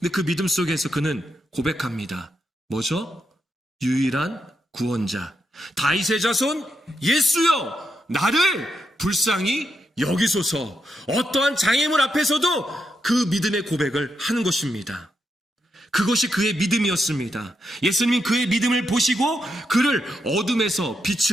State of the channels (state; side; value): normal; both; correlation 0.83